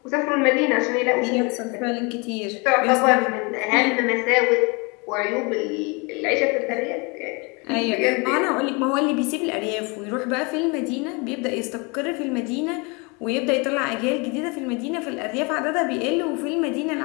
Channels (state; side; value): quieter; right; 29.9 dB